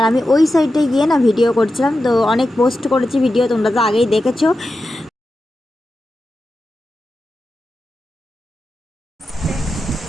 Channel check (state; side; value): normal; both; correlation 0.91